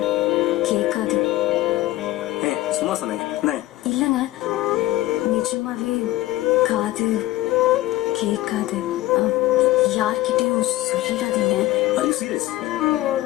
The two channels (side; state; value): right; quieter; 16.8 dB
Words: கேட்காது. சும்மா சொன்னேன். இல்லைங்க, நிஜமாவே காது கேட்காது. யார்கிட்டயும் சொல்லிடாதீங்க.